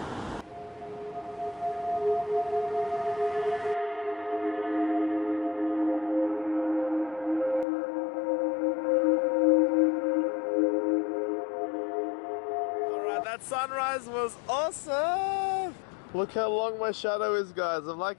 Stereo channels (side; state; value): right; drops out; at 7.7 s